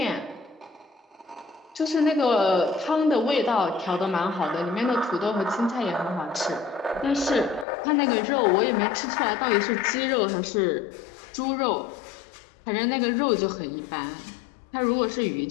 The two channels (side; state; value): right; drops out; at 7.7 s